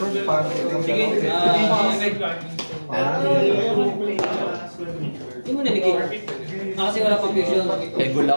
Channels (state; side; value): inverted; both; correlation -1.00